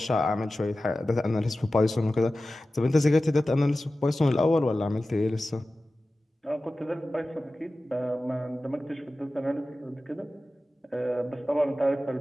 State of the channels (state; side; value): normal; both; correlation 0.95